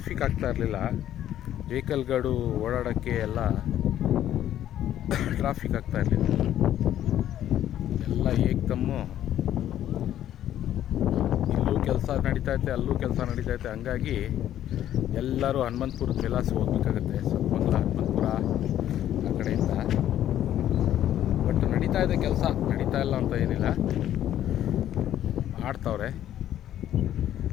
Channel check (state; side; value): quieter; right; 11.7 dB